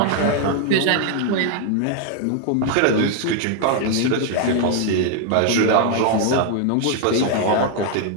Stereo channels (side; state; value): both; different; correlation 0.00